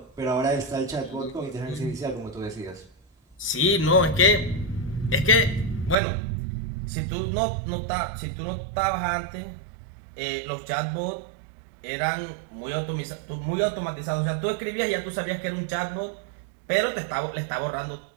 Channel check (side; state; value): left; drops out; at 6.0 s